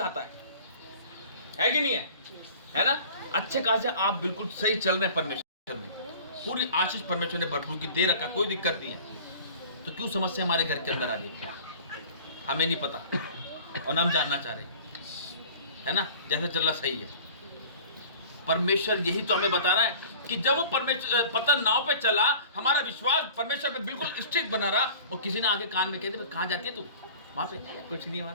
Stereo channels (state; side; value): inverted; both; correlation -0.44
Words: है कि नहीं है ना। अच्छे खासे आप बिल्कुल सही चल रहे हैं परमेश्वर में, पूरी आशीष परमेश्वर ने भरपूर की दे रखा, कोई दिक्कत नहीं है। तो क्यों समस्या हमारे घर के अंदर आ रही है, हमें नहीं पता और ना हम जानना चाह रहे, है ना। जैसे चल रहा सही है, परमेश्वर यही तो हमें बता रहा है कि जब वो परमेश्वर पता नाव पे चला, हमारा विश्वास परमेश्वर पे बिल्कुल स्ट्रिक्ट बना रहा और किसी ने आगे कान में कहते कहाँ जाती है तू, वहां पे कुछ नहीं, वहां